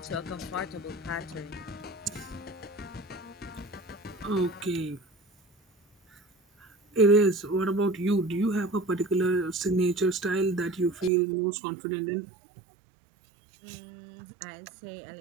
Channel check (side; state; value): left; drops out; at 11.1 s